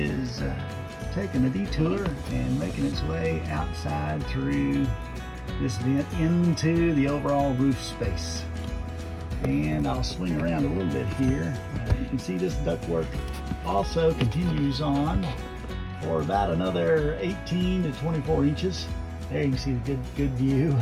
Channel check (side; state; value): both; identical; correlation 1.00